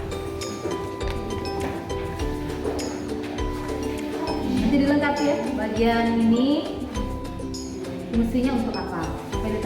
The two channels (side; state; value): both; identical; correlation 1.00